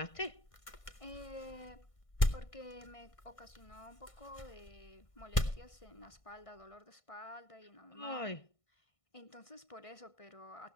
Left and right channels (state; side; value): late; right; 1.6 ms